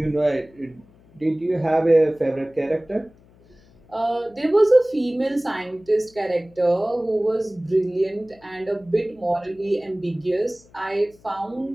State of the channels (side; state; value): left; noise; hum, 28 dB below the sound